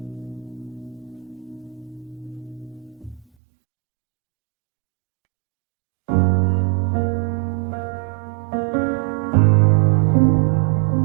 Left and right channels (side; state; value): left; drops out; at 3.2 s